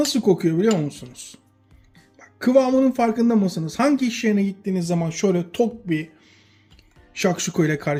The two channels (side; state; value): both; identical; correlation 1.00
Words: kokuyor biliyor musunuz? Bak, kıvamının farkında mısınız? Hangi iş yerine gittiğiniz zaman şöyle tok bir şakşuka ile